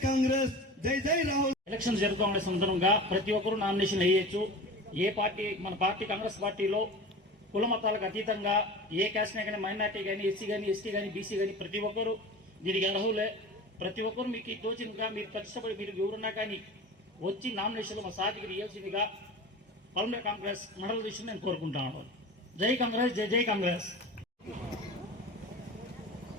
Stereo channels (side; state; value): both; normal; correlation 0.34